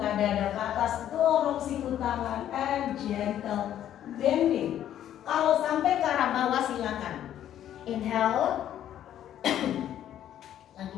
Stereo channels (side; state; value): right; quieter; 11.1 dB